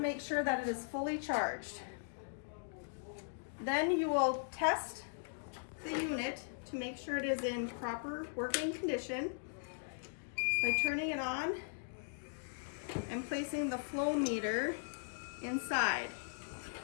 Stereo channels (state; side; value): silent; right; digital silence